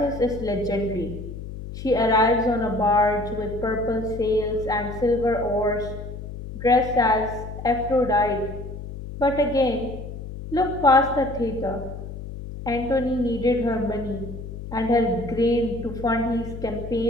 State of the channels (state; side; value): noise; left; hum, 10 dB below the sound